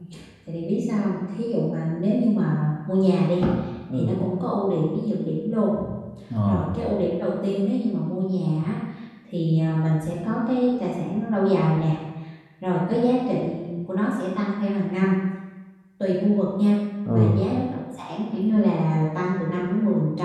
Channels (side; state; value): both; identical; correlation 1.00